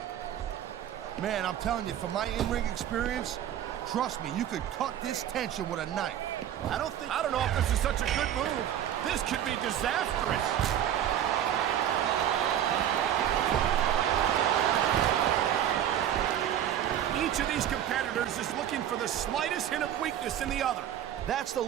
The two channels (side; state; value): left; quieter; 10.6 dB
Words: Man, I'm telling you, from my in-ring experience, trust me, you could cut this tension with a knife. I don't know if this is such a good move. This could be disastrous. Each of these competitors is looking for the slightest hint of weakness in the other. That's the